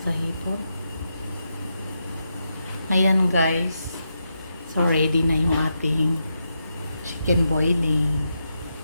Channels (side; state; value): both; inverted; correlation -0.85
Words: sa hipon. Ayan guys. So ready na yung ating chicken boiling.